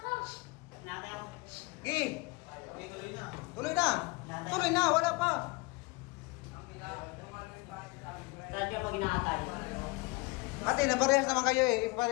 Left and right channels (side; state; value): right; quieter; 24.9 dB